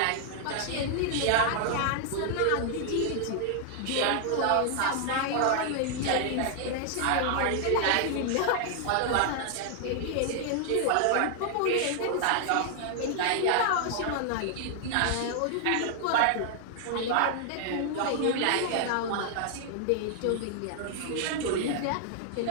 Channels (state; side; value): different; both; correlation 0.00